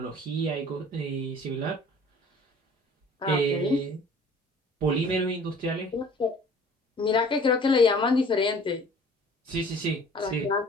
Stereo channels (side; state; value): both; normal; correlation 0.49